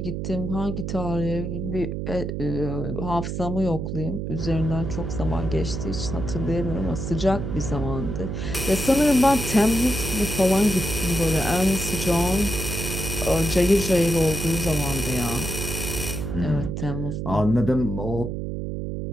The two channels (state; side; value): noise; right; hum, 4 dB below the sound